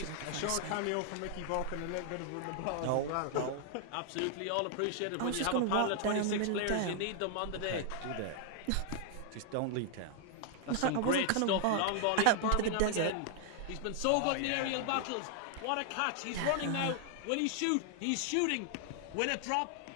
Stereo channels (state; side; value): different; both; correlation 0.00